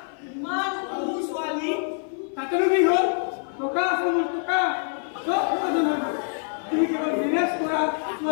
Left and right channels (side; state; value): right; silent; 56 dB below the other